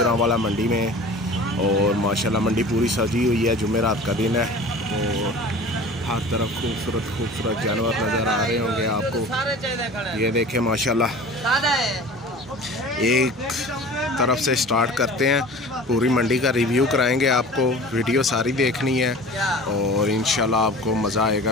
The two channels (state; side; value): normal; both; correlation 0.40